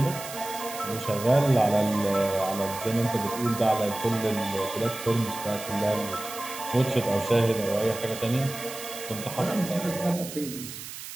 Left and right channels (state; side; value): noise; right; hiss, 11 dB below the sound